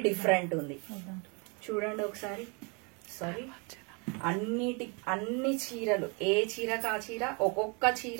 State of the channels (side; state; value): left; quieter; 32.9 dB